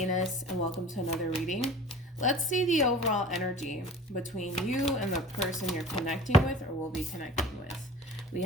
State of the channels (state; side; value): normal; both; correlation 0.41